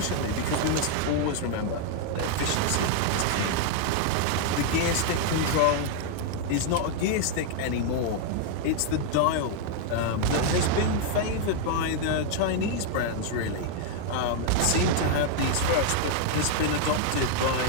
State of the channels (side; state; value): both; different; correlation 0.00